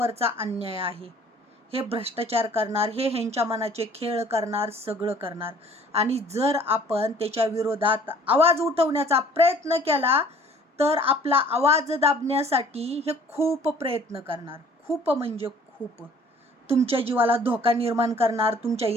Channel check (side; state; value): both; normal; correlation 0.54